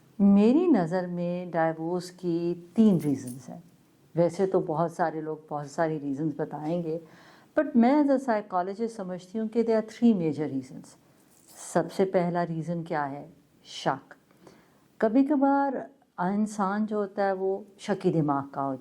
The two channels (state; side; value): identical; both; correlation 1.00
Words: میری نظر میں ڈائیورس کی 3 ریزنز ہیں. ویسے تو بہت سارے لوگ بہت ساری ریزنز بتائیں گے، بٹ میں ایز اے سائیکالوجسٹ سمجھتی ہوں کہ دے آر 3 میجر ریزنز. سب سے پہلا ریزن کیا ہے؟ شک. کبھی کبھار انسان جو ہوتا ہے وہ شکی دماغ کا ہو